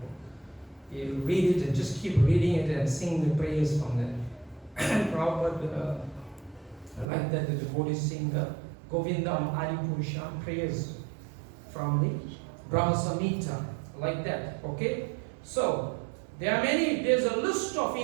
book. You read it and just keep reading it and sing the prayers from there. Prabhupada, I like that the devotees sing the Govindam Adipurusham prayers from the Brahma Samhita, like that. Okay? So, there's a list of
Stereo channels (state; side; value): drops out; left; at 7.1 s